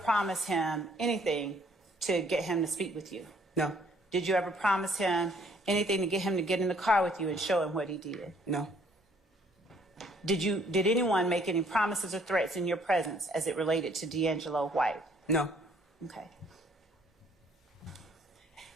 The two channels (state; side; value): normal; both; correlation 0.63